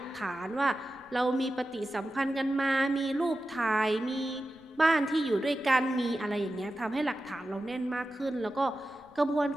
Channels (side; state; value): left; noise; rumble, 29 dB below the sound